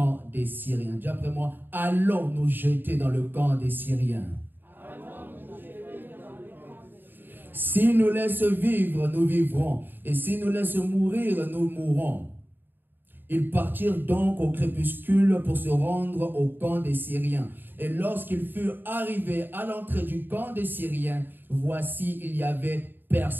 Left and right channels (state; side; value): late; left; 0.094 ms